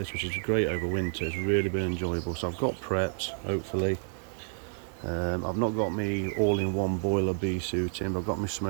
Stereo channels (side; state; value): left; silent; digital silence